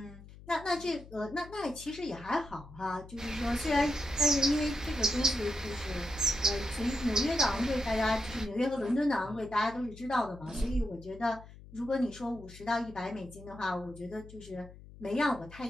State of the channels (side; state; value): left; noise; hum, 18 dB below the sound